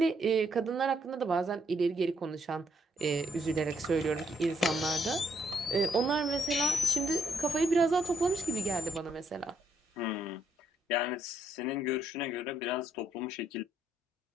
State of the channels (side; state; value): both; normal; correlation 0.73